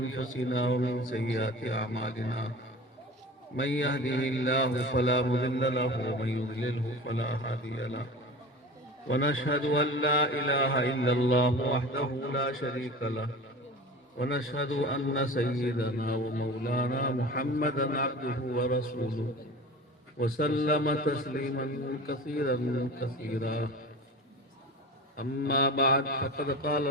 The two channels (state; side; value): normal; both; correlation 0.35